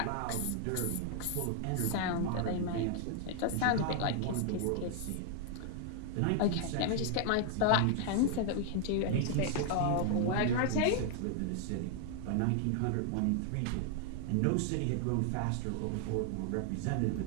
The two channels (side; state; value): both; different; correlation 0.00